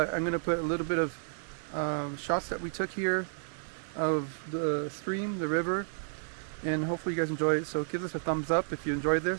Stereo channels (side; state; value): left; silent; digital silence